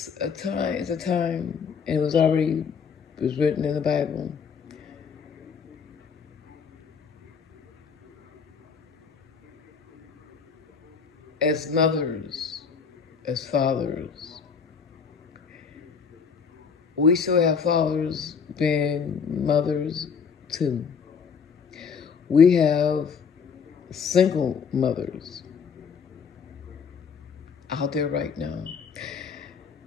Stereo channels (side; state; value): right; quieter; 6.1 dB